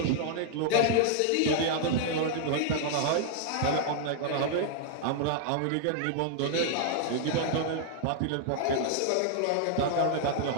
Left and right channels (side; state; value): both; different; correlation -0.01